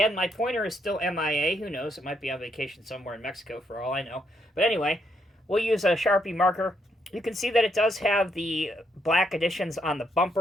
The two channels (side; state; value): both; normal; correlation 0.76